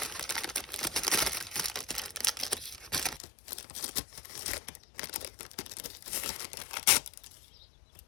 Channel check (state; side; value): drops out; right; at 3.2 s